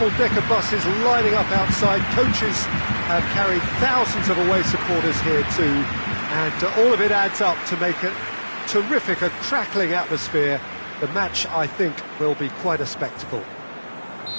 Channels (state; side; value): inverted; both; correlation -1.00